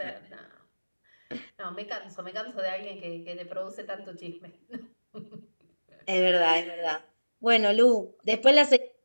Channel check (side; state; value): both; inverted; correlation -1.00